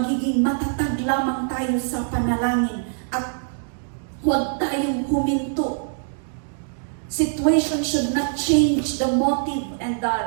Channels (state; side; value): silent; left; digital silence